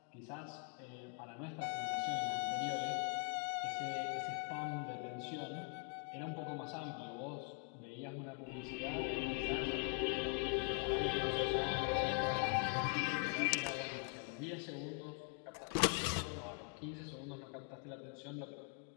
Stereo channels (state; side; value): quieter; right; 39.4 dB